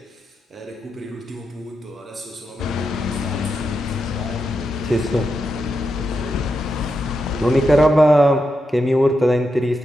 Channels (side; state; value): both; normal; correlation 0.86